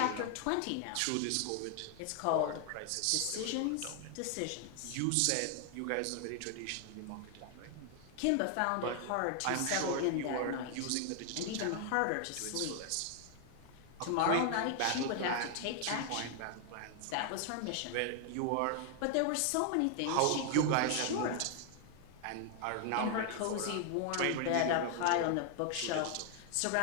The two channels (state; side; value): different; both; correlation 0.00